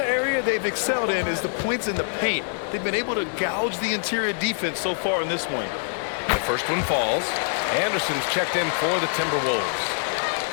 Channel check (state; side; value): silent; right; digital silence